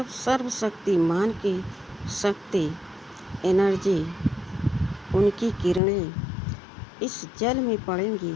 सर्वशक्तिमान की शक्ति, एनर्जी, उनकी किरणें इस जल में पड़ेंगी,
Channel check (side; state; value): right; drops out; at 5.8 s